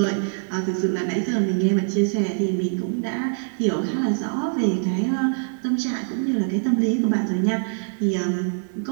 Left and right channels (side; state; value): left; silent; digital silence